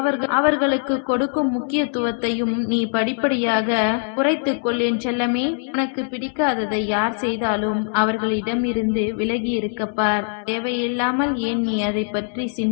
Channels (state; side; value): silent; right; 64 dB below the other